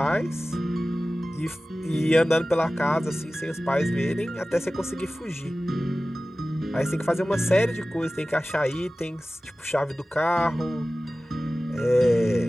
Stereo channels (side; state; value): both; normal; correlation 0.96